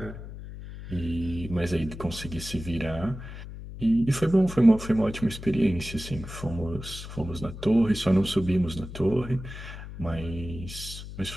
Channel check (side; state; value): left; noise; hum, 11 dB below the sound